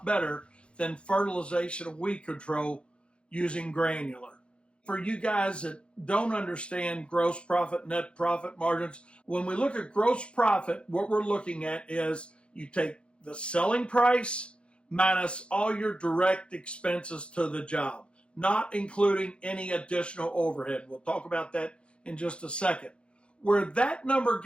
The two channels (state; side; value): late; right; 0.058 ms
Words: better, than fertilization and weed control using granular. For you guys that don't understand gross profit, net profit margins, when we look at gross profit, what we're looking at is you take the selling price minus all your direct expenses to the job, not including any additional overhead. We'll talk about that in just a second. Where that number